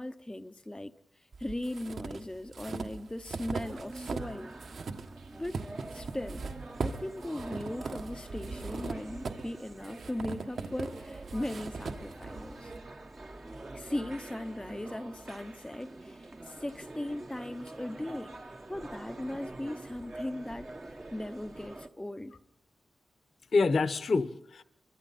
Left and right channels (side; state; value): both; normal; correlation 0.93